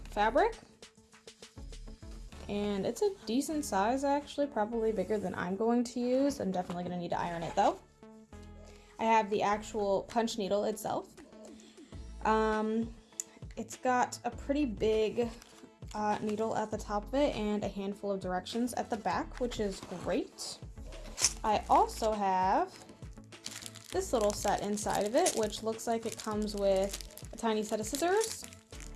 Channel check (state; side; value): identical; both; correlation 1.00